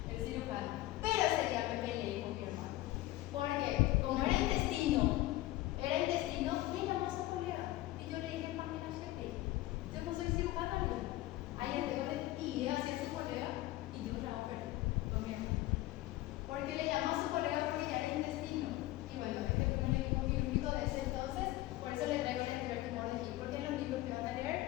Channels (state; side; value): quieter; right; 16.9 dB